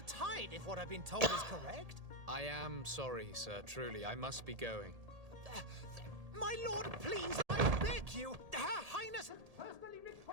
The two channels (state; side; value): late; left; 1.8 ms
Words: tide, if what I've been told is correct. I am sorry, sir. Truly, I must be going. My lord, please, I beg you. Her Highness has personally